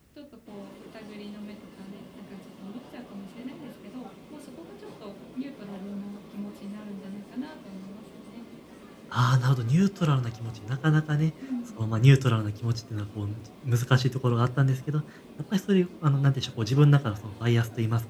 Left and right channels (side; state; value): both; identical; correlation 1.00